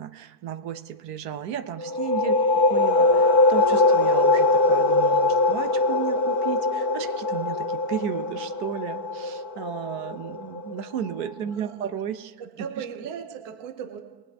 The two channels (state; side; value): late; right; 4.5 ms